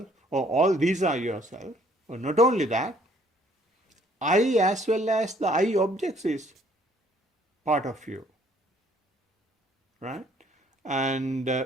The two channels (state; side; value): normal; both; correlation 0.62